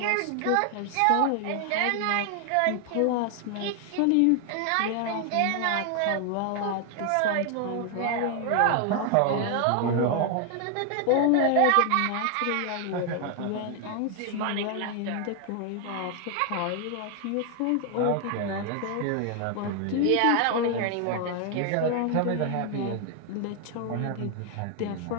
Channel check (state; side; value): different; both; correlation 0.00